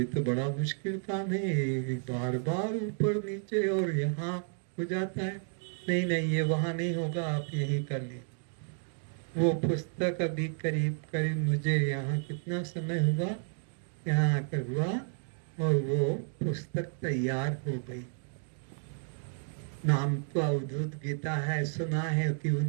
तो बड़ा मुश्किल काम है, बार बार ऊपर नीचे और यहाँ हो जाता है। नहीं ये वहाँ नहीं होगा, आप यही कर लीजिए। वो पुस्तक अभी करीब मुझे यहाँ कितना समय हुआ, यहाँ आकर हुआ और वो पुस्तक तैयार हो गई। नाम तो अवधूत गीता है, सुना है कि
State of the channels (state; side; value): silent; left; 57 dB below the other